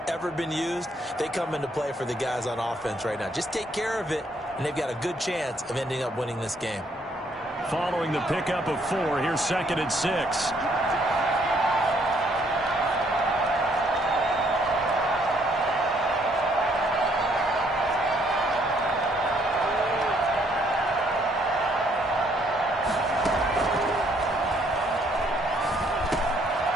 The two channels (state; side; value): normal; both; correlation 0.68